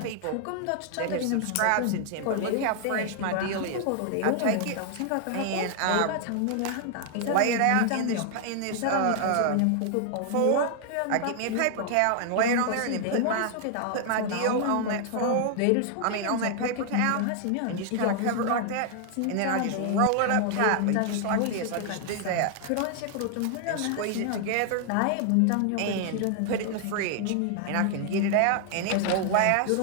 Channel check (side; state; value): both; different; correlation 0.00